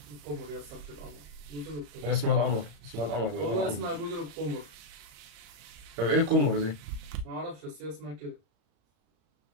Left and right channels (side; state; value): left; late; 35 ms